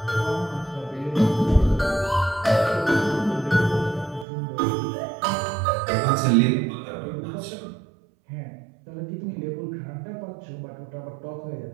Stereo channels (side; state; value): left; drops out; at 4.2 s